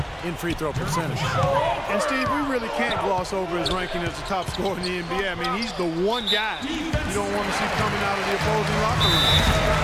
in free throw percentage. And Steve, we really can't gloss over his ranking as the top scorer in the NBA. I mean, he's the one guy you don't want to see coming out of the opposing locker room.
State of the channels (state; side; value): identical; both; correlation 1.00